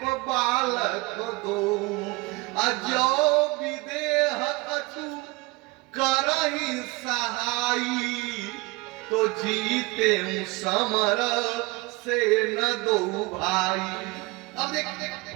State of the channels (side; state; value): left; quieter; 24.1 dB